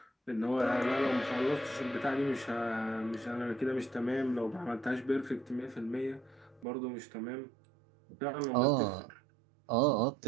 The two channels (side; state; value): left; drops out; at 6.7 s